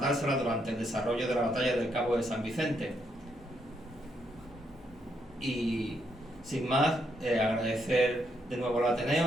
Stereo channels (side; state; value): both; normal; correlation 0.76